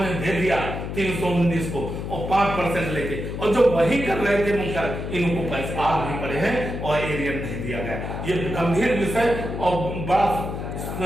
दे दिया 319 को और 5% लेके, और जो वही कर रहे थे मुख्यालय, इनको पैसे आग भी पड़े हैं और एरियर नहीं दिया गया। ये गंभीर विषय और बड़ा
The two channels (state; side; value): noise; left; hum, 5 dB below the sound